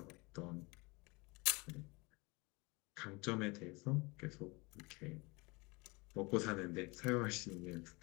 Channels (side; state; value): right; quieter; 26.2 dB